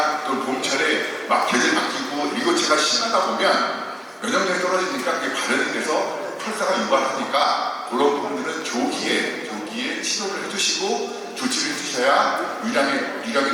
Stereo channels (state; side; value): identical; both; correlation 1.00